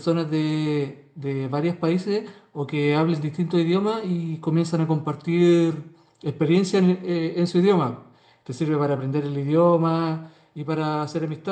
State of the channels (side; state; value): both; identical; correlation 1.00